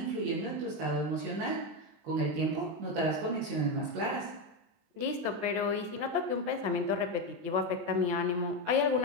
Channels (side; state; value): left; late; 19 ms